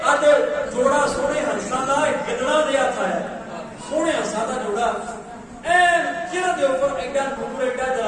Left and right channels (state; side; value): identical; both; correlation 1.00